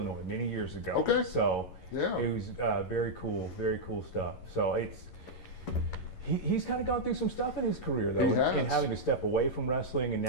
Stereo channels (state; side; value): late; right; 11 ms